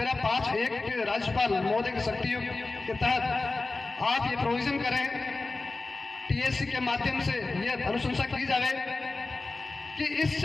5(1) के राज्यपाल महोदय की शक्तियों के तहत आप ये प्रोविजन करें, टीएससी के माध्यम से ये अनुशंसा की जाए कि इस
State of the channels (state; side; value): quieter; right; 3.5 dB